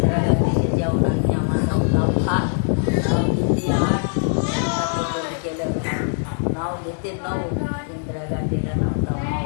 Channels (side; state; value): right; silent; 64 dB below the other